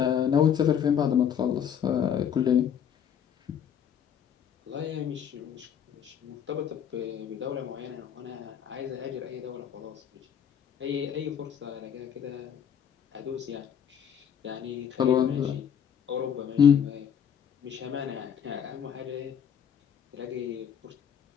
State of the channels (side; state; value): right; quieter; 8.4 dB